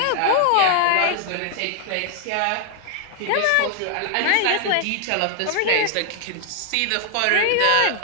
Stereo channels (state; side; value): different; both; correlation 0.00